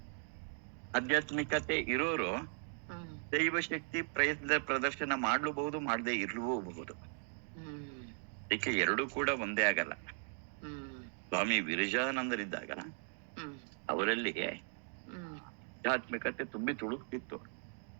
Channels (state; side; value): silent; left; 53 dB below the other